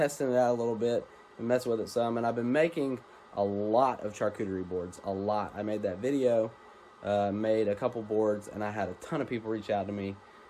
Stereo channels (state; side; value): identical; both; correlation 1.00